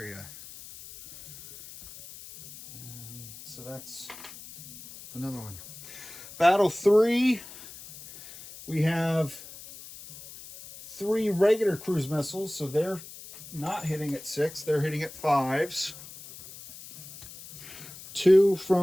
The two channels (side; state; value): left; noise; hiss, 16 dB below the sound